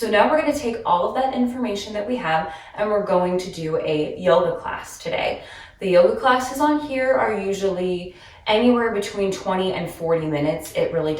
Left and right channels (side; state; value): both; identical; correlation 1.00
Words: now we're going to take all of that information that we have and we're going to do a yoga class today. The yoga classes on here are usually anywhere between 20 and 40 minutes. It really